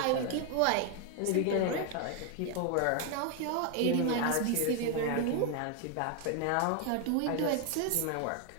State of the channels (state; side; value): different; both; correlation 0.01